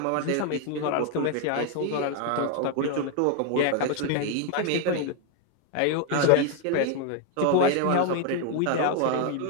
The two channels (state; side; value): different; both; correlation 0.01